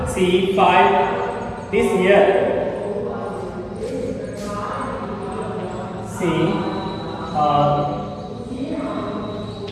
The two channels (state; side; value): identical; both; correlation 1.00